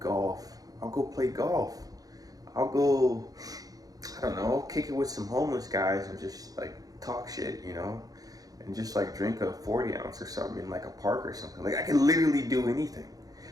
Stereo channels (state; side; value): late; left; 0.18 ms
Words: I'll go play golf. I'll go, I don't know, kick it with some homeless guys and just like talk shit, and just like drink a 40 ounce or something in like a park or something. Like I could literally do anything.